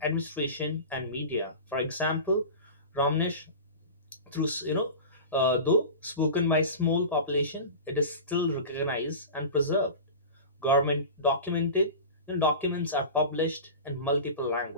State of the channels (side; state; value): both; inverted; correlation -0.31